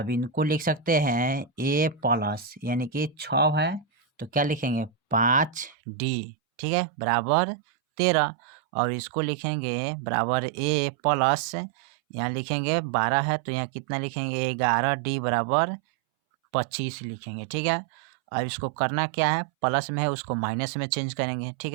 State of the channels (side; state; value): left; drops out; at 5.8 s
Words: इनको लिख सकते हैं ए प्लस, यानी कि 6 है, तो क्या लिखेंगे 5d, ठीक है, बराबर 13, और इसको लिखेंगे बराबर ए प्लस, यहाँ लिखेंगे 12 है, तो यहाँ कितना लिखेंगे 11d बराबर 25 लिखेंगे। ठीक है, अब इसको करना क्या है, प्लस में है उसको माइनस में चेंज करेंगे। ठीक